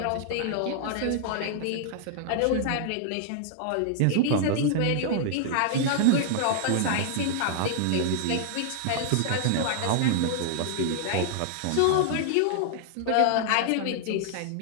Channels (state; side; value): different; both; correlation -0.01